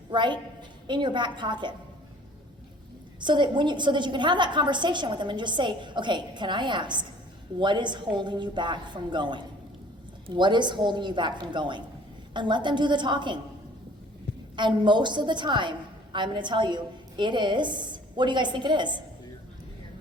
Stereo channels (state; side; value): normal; both; correlation 0.52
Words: right, in your back pocket. So that you can have that conversation with them and just say, okay, can I ask, what is holding you back from going? What is holding you back from going? And let them do the talking. And most of the time, I'm going to tell you, it is, what do you guys think it is?